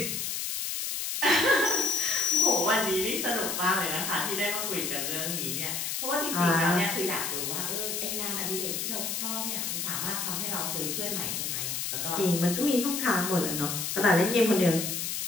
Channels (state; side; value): noise; left; hiss, 2 dB below the sound